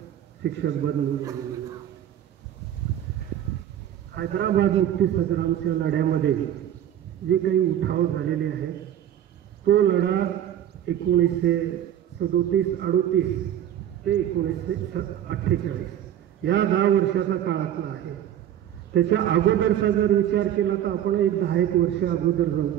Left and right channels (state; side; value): quieter; left; 11.0 dB